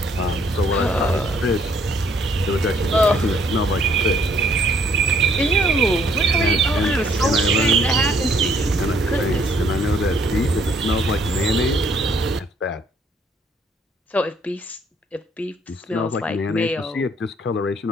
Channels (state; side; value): normal; both; correlation 0.65